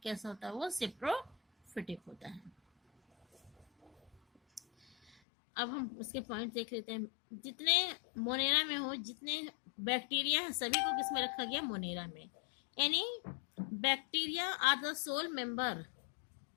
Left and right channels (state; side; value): drops out; right; at 5.1 s